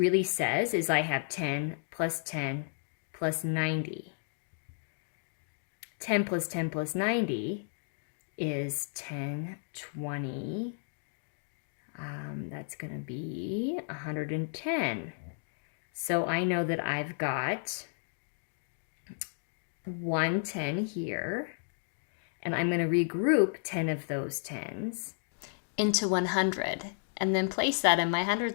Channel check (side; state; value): right; silent; digital silence